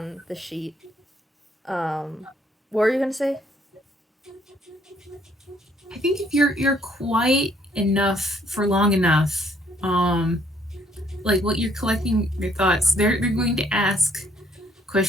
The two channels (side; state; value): both; normal; correlation 0.66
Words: the sheet. What were you gonna say? I think if you're quiet enough for long enough, like what you're collecting your thoughts, they're going to ask a